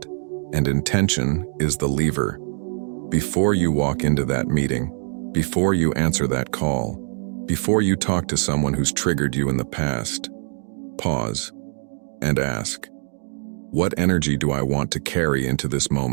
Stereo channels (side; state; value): left; silent; digital silence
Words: And intention is the lever. Before you walk into that meeting, before you answer that call, before you talk to someone who's triggered you in the past, pause and ask, what energy do I want to carry into this